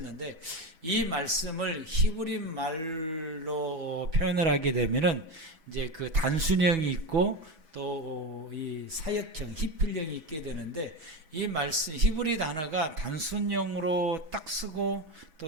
이 말씀을 히브리 말로 표현을 하게 되면은 이제 그 단순형이 있고 또 이 사역형, 히필형이 있게 되는데 이 말씀 히브리 단어가 단순형으로 딱 쓰고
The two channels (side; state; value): left; late; 6.1 ms